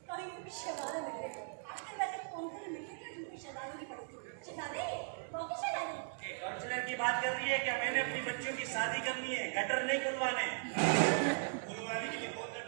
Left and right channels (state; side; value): silent; left; digital silence